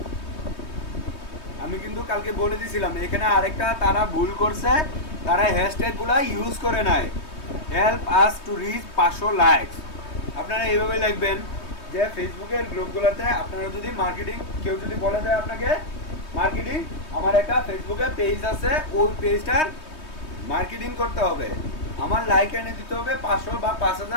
আমি কিন্তু কালকে বলে দিছিলাম, এখানে আরেকটা তারা ভুল করছে, তারা হ্যাশট্যাগুলো ইউজ করে নাই, help us to reach 500 likes. আপনারা এইভাবে লিখবেন যে ফেসবুকের গ্রুপগুলোতে আপনারা যদি মার্কেটিং, কেউ যদি বলে দেয় আপনাকে মার্কেটিং, আমার একটা ফেসবুকে পেজ আছে, ওই পেজটার মার্কেটিং করতে হবে, আমার লাইক এনে দিতে হবে 500 বা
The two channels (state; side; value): late; right; 3.2 ms